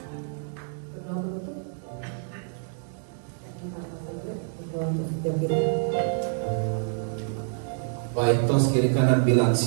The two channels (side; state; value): left; silent; 60 dB below the other